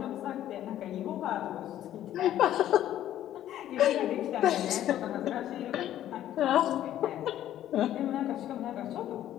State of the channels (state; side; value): quieter; right; 12.2 dB